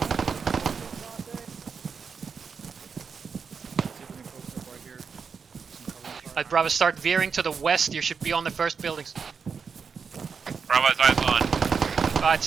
Alright, Bravo, start veering to the west. You should be on the first buildings. Bravo's eyes on. Alright,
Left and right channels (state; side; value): quieter; left; 5.9 dB